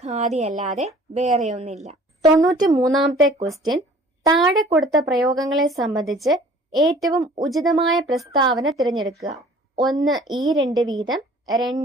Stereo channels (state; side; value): normal; both; correlation 0.51